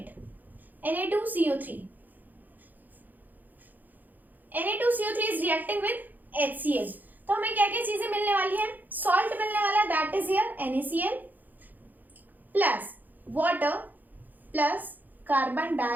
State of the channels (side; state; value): left; late; 0.084 ms